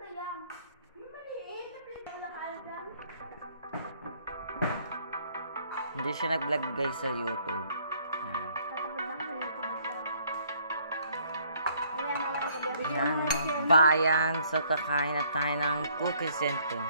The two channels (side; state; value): both; inverted; correlation -0.63